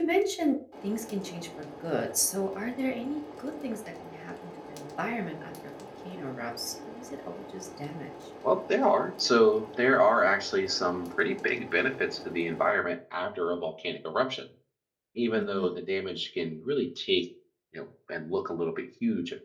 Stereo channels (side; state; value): both; identical; correlation 1.00